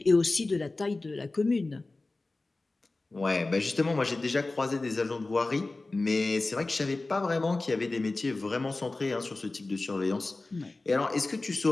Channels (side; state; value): right; quieter; 3.2 dB